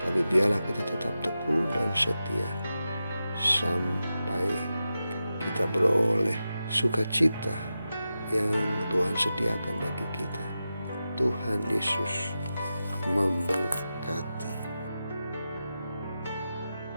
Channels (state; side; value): inverted; both; correlation -0.91